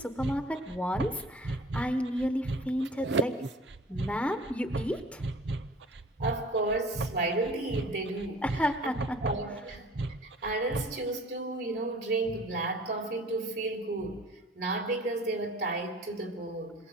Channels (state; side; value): normal; both; correlation 0.47